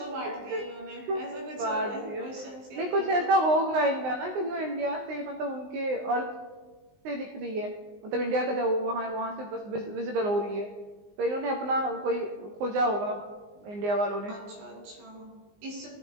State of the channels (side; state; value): left; late; 19 ms